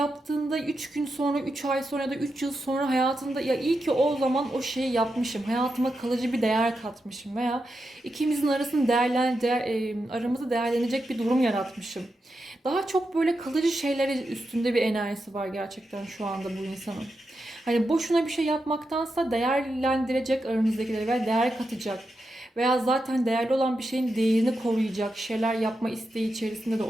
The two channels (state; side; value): normal; both; correlation 0.87